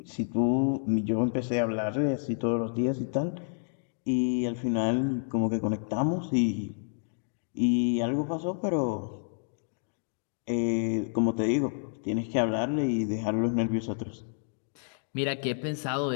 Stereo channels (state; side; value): silent; right; digital silence